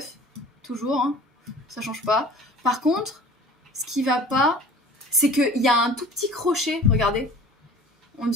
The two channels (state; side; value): normal; both; correlation 0.45